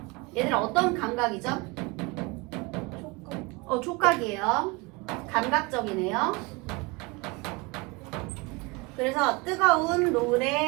얘들 어떤 감각이죠? 촉각이에요. 감각적이네요. 그래서 뜨거운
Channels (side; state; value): left; quieter; 25.8 dB